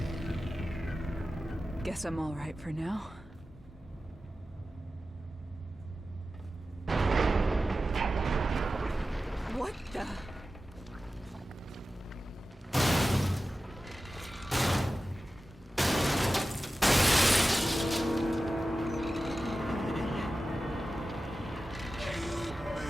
Guess I'm all right for now. What the?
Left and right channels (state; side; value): normal; both; correlation 0.94